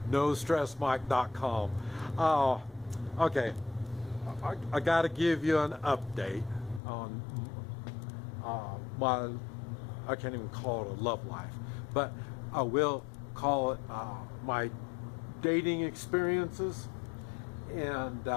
NoStressMike.com. Okay, I got to give you an update on my, I can't even call it a love life, but I will call it my dating experiences. And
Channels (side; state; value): right; drops out; at 6.8 s